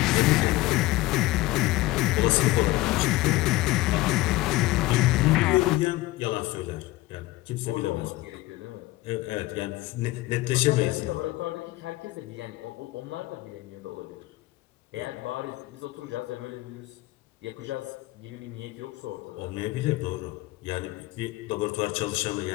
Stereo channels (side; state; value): right; quieter; 18.7 dB